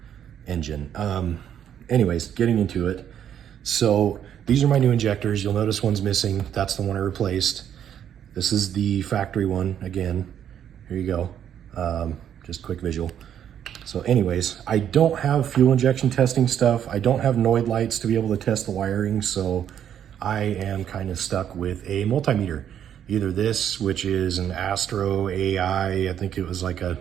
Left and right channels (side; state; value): left; quieter; 9.5 dB